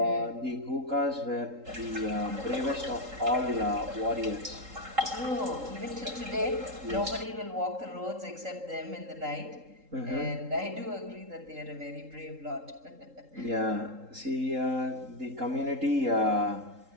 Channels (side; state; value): left; late; 3.8 ms